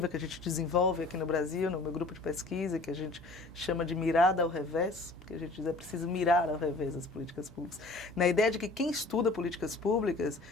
que a gente desenvolve aqui no Brasil, no meu grupo de pesquisa, que a gente chama de mirada ao revés, porque a gente diz é preciso mirar ao revés as políticas públicas, na ideia de que quem estuda políticas públicas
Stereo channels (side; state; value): right; quieter; 3.1 dB